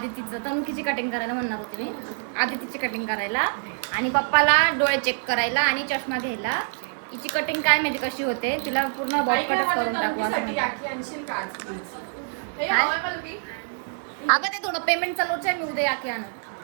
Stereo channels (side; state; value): left; silent; 56 dB below the other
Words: तनुकीची कटिंग करायला म्हणणार होते मी. आदितीची कटिंग करायला आणि पप्पाला डोळे चेक करायला आणि चष्मा घ्यायला. तिची कटिंग काय माहिती कशी होते, तिला पूर्ण बॉबकटच करून टाकू असं अगं ते थोडं पेमेंट चालूच आहे. मी उद्या याकी आणत